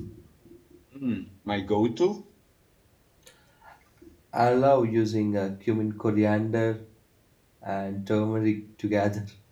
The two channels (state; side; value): identical; both; correlation 1.00